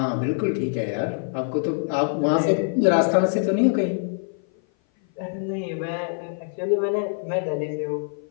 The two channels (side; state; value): right; silent; 56 dB below the other